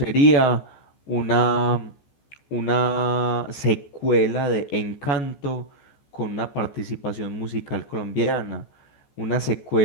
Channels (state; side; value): late; right; 14 ms